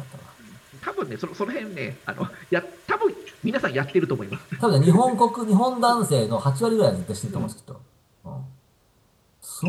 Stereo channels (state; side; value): identical; both; correlation 1.00